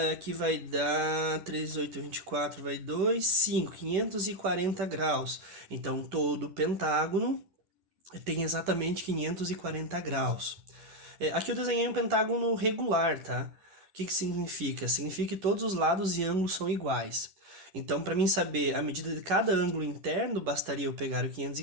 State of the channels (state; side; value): late; left; 10 ms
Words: que vai dar 3, 8, 24, vai 2, 5, 540 graus. Então, todo pentágono tem exatamente 540 graus. Aqui eu desenhei um pentágono regular, tá? O que significa? Significa que todos os lados e ângulos são iguais. Então, para mim saber a medida de cada ângulo interno, bastaria eu pegar o